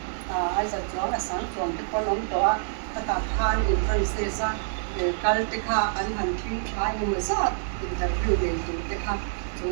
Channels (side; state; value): left; silent; 60 dB below the other